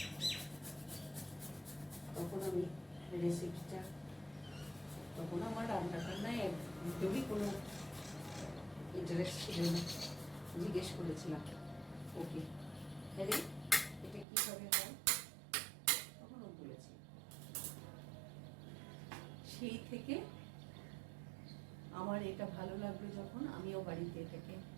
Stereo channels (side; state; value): left; drops out; at 14.2 s